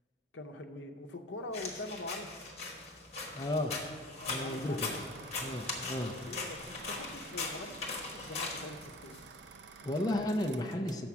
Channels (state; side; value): normal; both; correlation 0.45